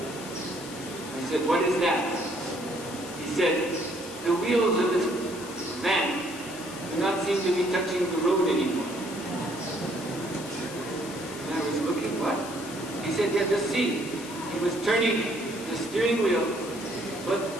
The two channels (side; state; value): left; noise; hiss, 14 dB below the sound